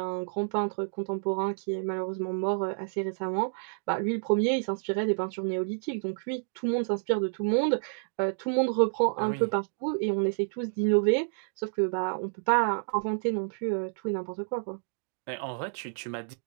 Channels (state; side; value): silent; left; digital silence